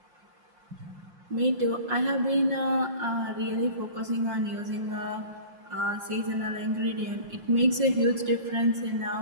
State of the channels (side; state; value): left; late; 5.7 ms